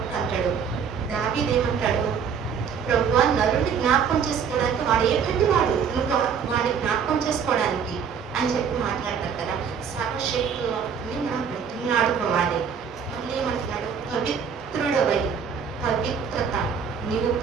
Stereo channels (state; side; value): quieter; left; 6.8 dB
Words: అంటాడు, దావీదు ఏమంటాడు? ప్రభువా, నరుడిని జ్ఞాపకం చేసుకోవడానికి వాడు ఏ కంటి వాడు, నువ్వు వాడిని జ్ఞాపకం చేసుకోవడానికి అని చెప్పి మాట్లాడతారు కదా. సర్వశక్తుని మనం బ్రతిమలాడుకోవాలి. మళ్ళీ ఏమంటున్నాడు? పవిత్రుడవై, పవిత్రత, నీవు